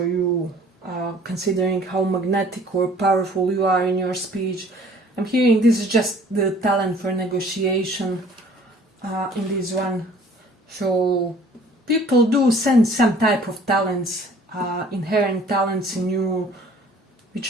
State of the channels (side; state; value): both; normal; correlation 0.53